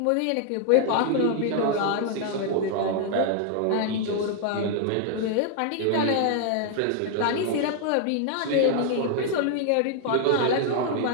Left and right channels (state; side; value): different; both; correlation 0.00